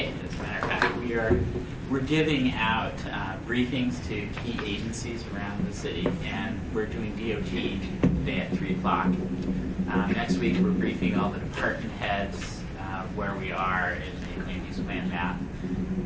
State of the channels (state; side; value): identical; both; correlation 1.00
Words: as a matter of fact, we're giving out briefings to key agencies around the city, and we're doing DOT today at 3 o'clock. Next week, we're briefing all the department heads where we are in the land use plan map,